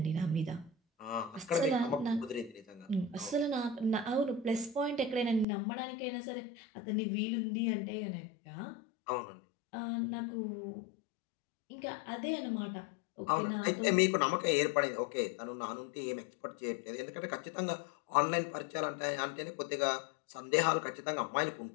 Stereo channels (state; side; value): drops out; right; at 5.5 s